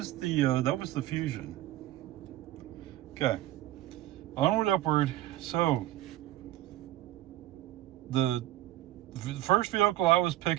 the Fusion. Okay. Onward, upward. So the first vehicle I was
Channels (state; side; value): quieter; left; 14.6 dB